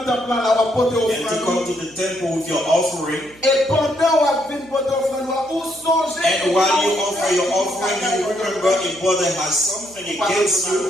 temple là, ou à porter and to come offrande. to the temple with your offering, Et pendant ou à venir porter offrande, ou songez. and while you offer your offering, you remember a brother has something against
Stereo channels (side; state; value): right; noise; hum, 26 dB below the sound